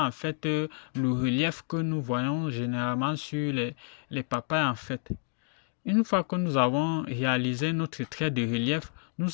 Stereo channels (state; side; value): silent; right; 58 dB below the other